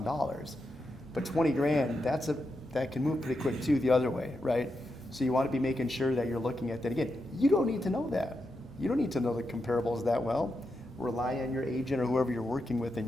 but 20 grand, that can move pretty quick too the other way, right? So you want to be making sure that you're looking at that. Again, you don't need to know that. You don't need to know the comparables that well. Rely on your agent or whoever you're working with in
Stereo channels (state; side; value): normal; both; correlation 0.86